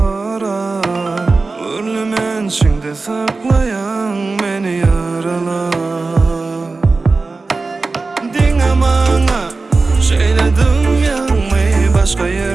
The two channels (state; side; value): quieter; left; 3.8 dB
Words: Urlumen içinde saklayan meni yaralar. Dinle bana şeyledim yanmayı, başka